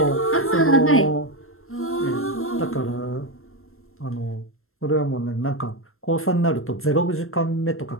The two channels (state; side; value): late; right; 0.62 ms